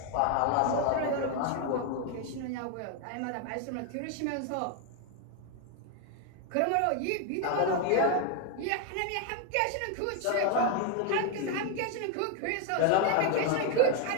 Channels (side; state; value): both; different; correlation 0.01